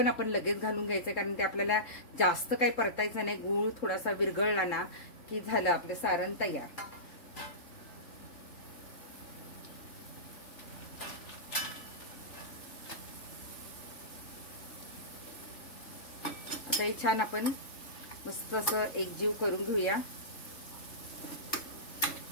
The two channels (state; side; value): late; right; 3.7 ms